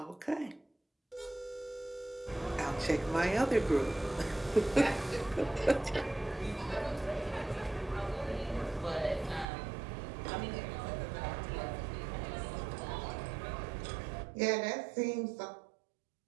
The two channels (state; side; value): drops out; left; at 9.5 s